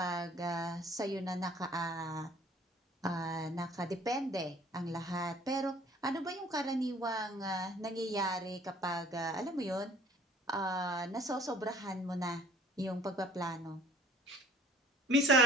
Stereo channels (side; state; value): both; normal; correlation 0.54